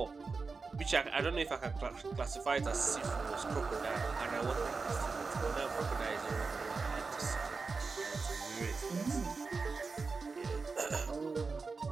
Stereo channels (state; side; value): quieter; left; 4.4 dB